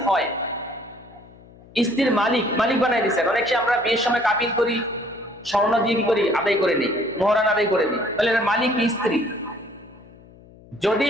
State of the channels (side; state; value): left; noise; hum, 23 dB below the sound